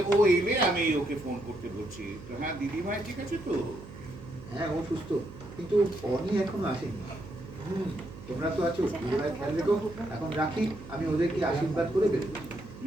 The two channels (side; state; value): right; noise; hum, 16 dB below the sound